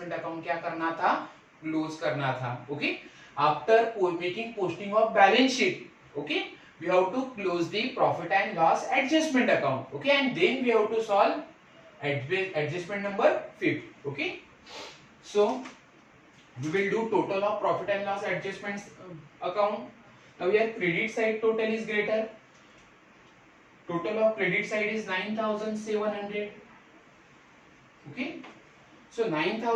account क्या करना था, क्लोज करना था. Okay, after making posting of balance sheet, okay, we have to close the profit and loss adjustment account. Okay, and then we have to solve adjustment number 5. Okay, so we will do total of profit and loss adjustments account. Now here credit side total is greater, total of credit side is 9,700. okay, so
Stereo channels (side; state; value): both; identical; correlation 1.00